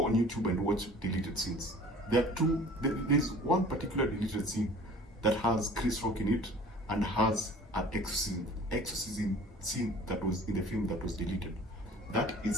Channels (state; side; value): normal; both; correlation 0.47